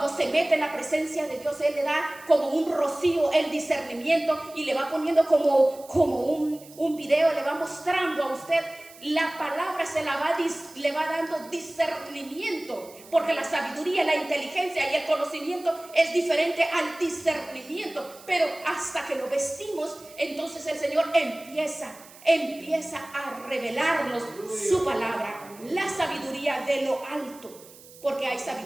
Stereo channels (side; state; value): right; noise; hiss, 21 dB below the sound